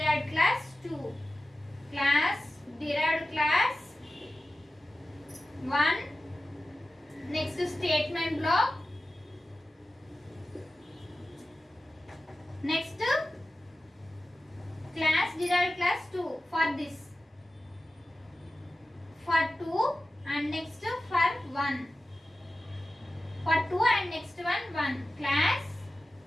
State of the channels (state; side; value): normal; both; correlation 0.95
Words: class 2. Class, derived class 1. Next, statement block. Next, class, derived class 2 for this. For 2 and next for 1. For 2 and next one 1. Class,